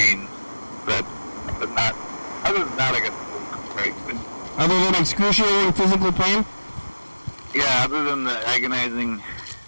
but not. Other than that, I guess it's great. Other than excruciating physical pain? Yeah, other than the agonizing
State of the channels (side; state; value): both; inverted; correlation -1.00